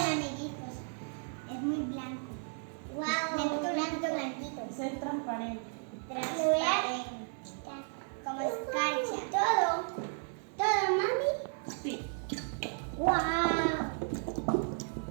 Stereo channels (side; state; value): left; silent; 55 dB below the other